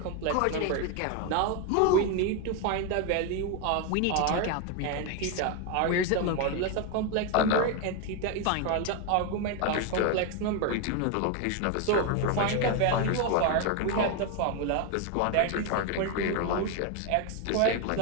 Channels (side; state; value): both; different; correlation 0.01